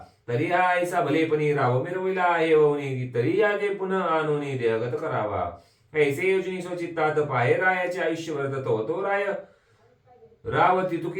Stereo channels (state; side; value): identical; both; correlation 1.00